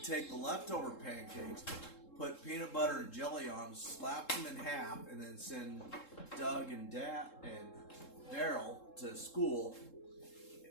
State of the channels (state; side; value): late; right; 3.7 ms